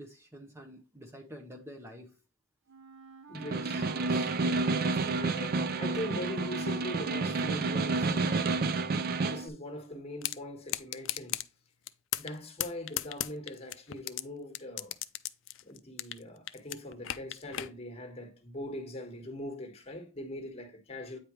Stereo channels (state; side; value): normal; both; correlation 0.33